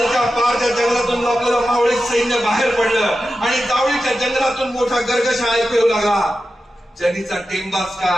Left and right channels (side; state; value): both; normal; correlation 0.92